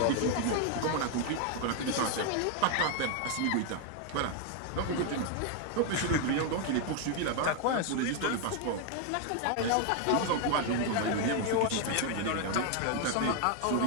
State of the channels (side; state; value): both; different; correlation 0.01